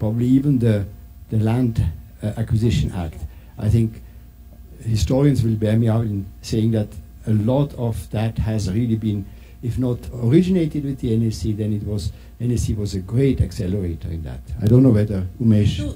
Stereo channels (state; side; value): identical; both; correlation 1.00